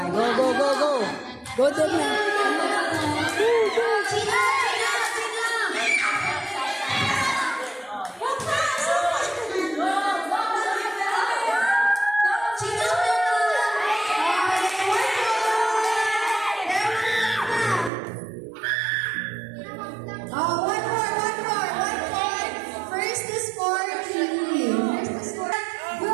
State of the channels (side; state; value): left; drops out; at 17.9 s